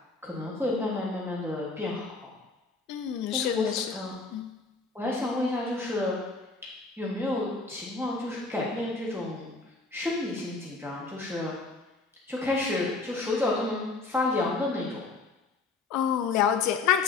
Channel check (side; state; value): right; quieter; 3.9 dB